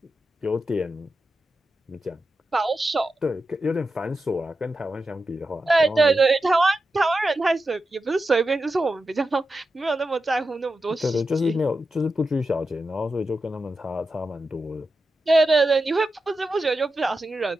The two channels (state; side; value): normal; both; correlation 0.90